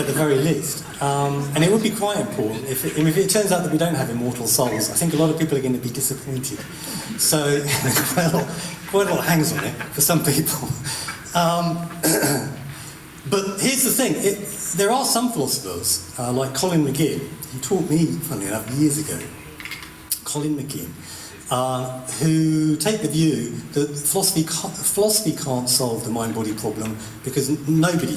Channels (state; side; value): identical; both; correlation 1.00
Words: the very least. And it would be quite important if it turns out that we don't have immortal souls. I think a lot of people are going to be disappointed. So, quite a lot hangs on it for some people. But here's the thing. There are some philosophers, like Colin McGinn, who taught me, funny enough, years ago, Colin McGinn, who take the view that philosophy can't solve the mind-body problem because